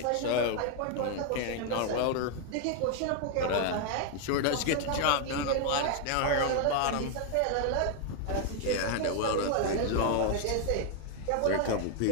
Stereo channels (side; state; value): both; different; correlation 0.00